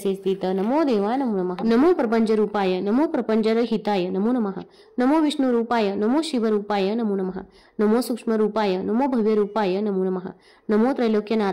स्थित नमो देवा नमो नमः. नमो प्रपंच रूपाय नमो प्रपंच हिताय नमो नमः. नमो विष्णु रूपाय नमो शिव रूपाय नमो नमः. नमो सूक्ष्म रूपाय नमो भव्य रूपाय नमो नमः. नमो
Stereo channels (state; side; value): identical; both; correlation 1.00